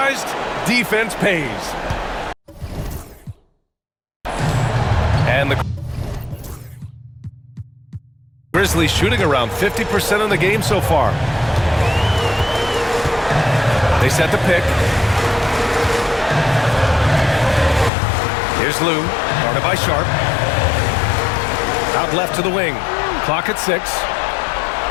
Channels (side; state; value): right; drops out; at 17.9 s